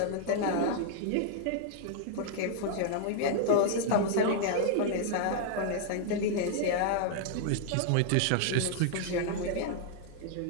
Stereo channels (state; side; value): different; both; correlation -0.01